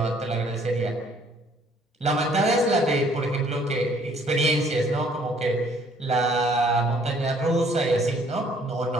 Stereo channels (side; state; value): both; normal; correlation 0.61